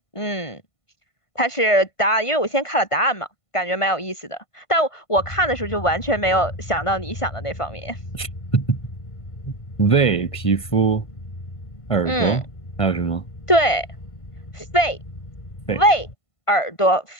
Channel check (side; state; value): right; late; 1.5 ms